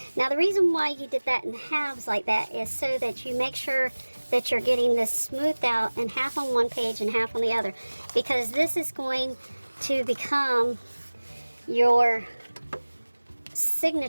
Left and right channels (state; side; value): inverted; both; correlation -1.00